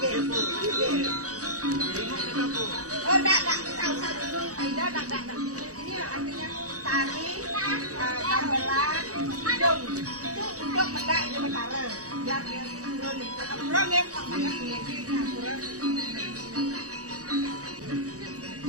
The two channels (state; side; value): late; left; 0.66 ms